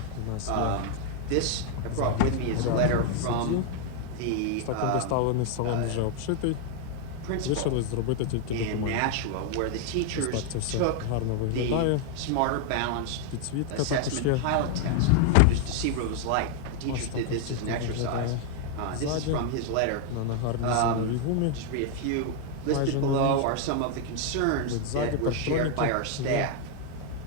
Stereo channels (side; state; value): both; different; correlation 0.00